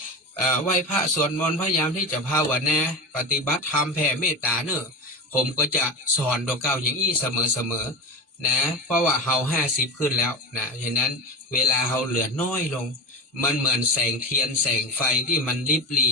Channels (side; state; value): both; normal; correlation 0.23